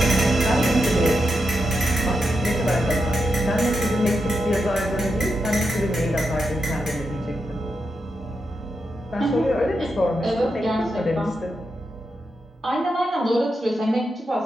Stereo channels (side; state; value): both; normal; correlation 0.86